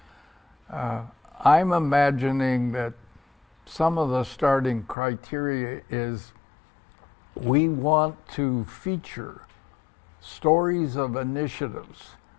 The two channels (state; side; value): drops out; right; at 5.0 s